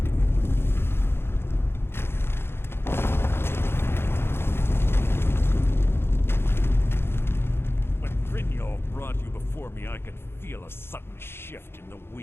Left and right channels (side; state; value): right; late; 0.11 ms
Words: When Brynjolf brought you before me, I could feel a sudden shift in the